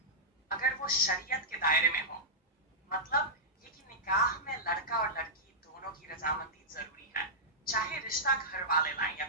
اگر وہ شریعت کے دائرے میں ہو۔ مطلب یہ کہ نکاح میں لڑکا اور لڑکی دونوں کی رضامندی ضروری ہے، چاہے رشتہ گھر والے لائیں یا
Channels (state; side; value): normal; both; correlation -0.12